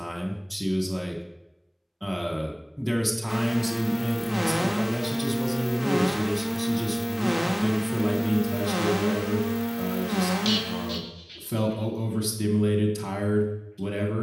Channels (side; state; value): both; identical; correlation 1.00